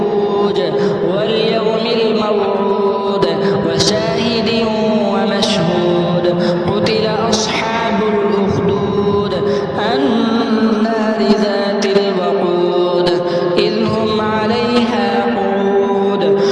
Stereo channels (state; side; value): identical; both; correlation 1.00